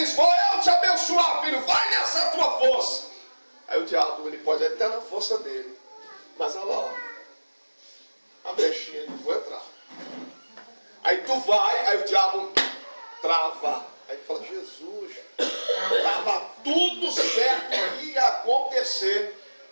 vou eu te abençoar, filho, vai nessa tua força. Aí o diabo, ele pode até na força dele, mas olha lá, ó, a brechinha, não vou entrar. Aí tu vai, aí o diabo trava. Aí tu fala, Jesus, estava tudo certo que ia acontecer.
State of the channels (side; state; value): both; inverted; correlation -1.00